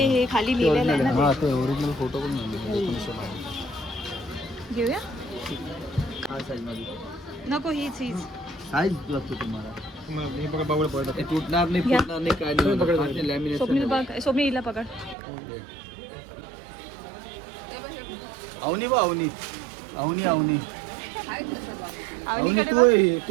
हे खाली लिहिलेलं आहे ना हां ते ओरिजिनल फोटो पण नाही ते. घेऊया हा साईजमध्ये नको हीच हीच साईज लागतो तुम्हाला ते तुटणार नाही घ्या. फुटणार नाही काय नाही लॅमिनेशन स्वप्नील बघ स्वप्नील हिला पकड अवनी बा अवनी अवनी अवनी अवनी अवनीकडे तू बघ. आहे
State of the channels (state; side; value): drops out; left; at 15.2 s